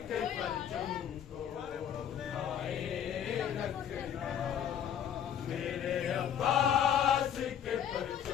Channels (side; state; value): right; quieter; 9.1 dB